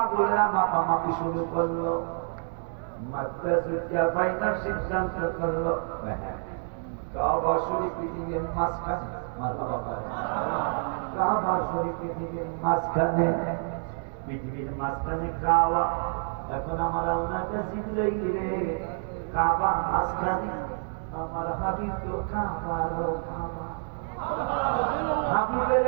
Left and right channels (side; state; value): left; silent; 59 dB below the other